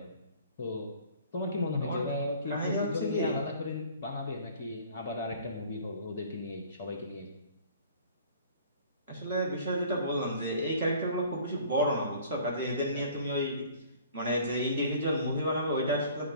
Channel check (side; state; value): both; inverted; correlation -0.50